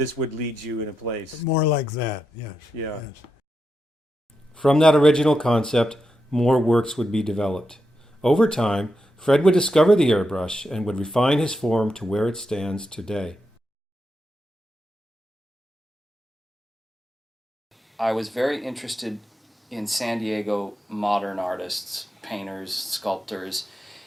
would lead you in a place? More like that, yes. Yeah. Yes. From that original concept, more works would be developed. Over time, Fred would discover the airbrush and would refine his form to where it stands today. I was very interested in San Diego modern artists, painters, sculptors,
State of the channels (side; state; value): both; normal; correlation 0.86